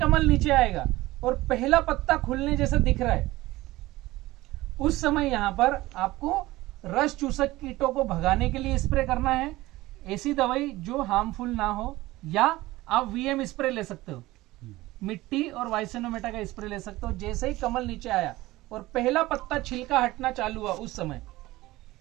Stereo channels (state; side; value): quieter; left; 18.3 dB